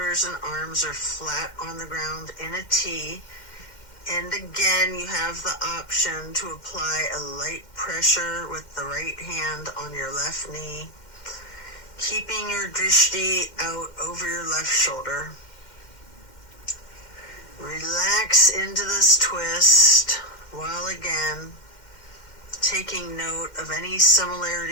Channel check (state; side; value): late; right; 2.1 ms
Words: and arms are flat on the ground in a T. And again, you have the option to apply a light pressure with the right hand on your left knee, keeping your drishti out over your left shoulder. Relax into this twist while again taking note of any